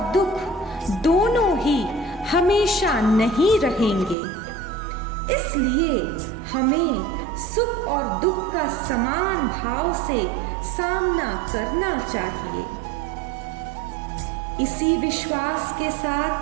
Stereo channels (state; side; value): drops out; left; at 4.2 s